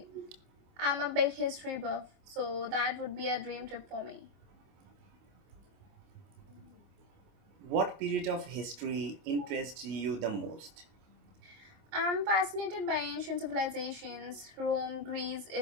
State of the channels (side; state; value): left; late; 25 ms